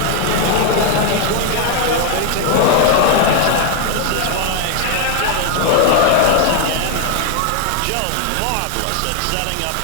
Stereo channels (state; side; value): different; both; correlation 0.00